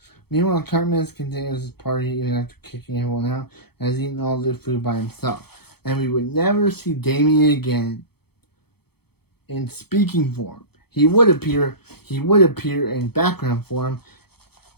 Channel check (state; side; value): late; right; 0.96 ms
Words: Meanwhile, Cartman continues his party even after kicking everyone out and has eaten all the food by himself. And we would never see Damien again in speaking form. He would appear in background form